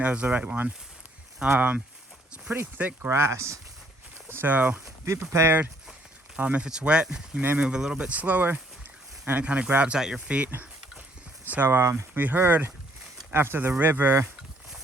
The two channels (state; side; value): normal; both; correlation 0.65